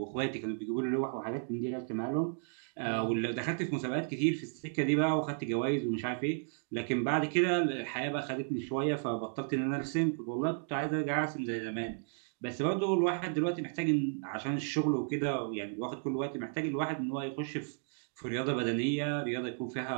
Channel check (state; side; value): silent; left; digital silence